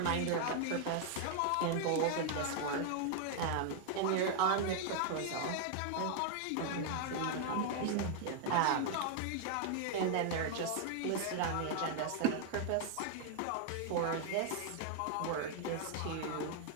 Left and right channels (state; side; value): different; both; correlation 0.00